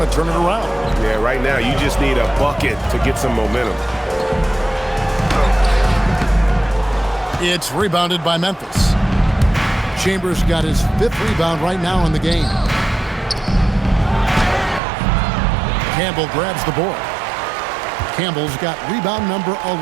to turn it around. Yeah, right now you just need a bucket to get some momentum. It's rebounded by Memphis. Chambers got his 5th rebound right now in the game. Campbell grabs the board. Campbell's got rebound number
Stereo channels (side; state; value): left; drops out; at 14.8 s